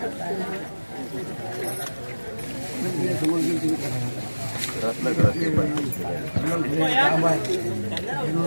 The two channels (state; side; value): inverted; both; correlation -1.00